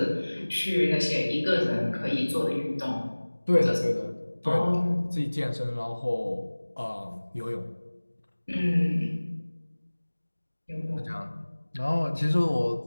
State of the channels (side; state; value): both; inverted; correlation -1.00